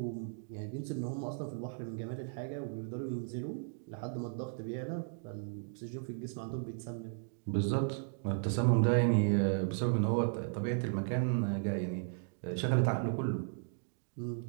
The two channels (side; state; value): left; silent; digital silence